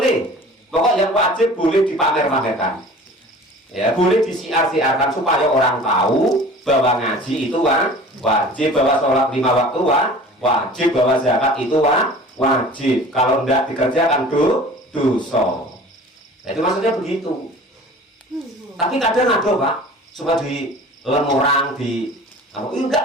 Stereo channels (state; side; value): normal; both; correlation 0.43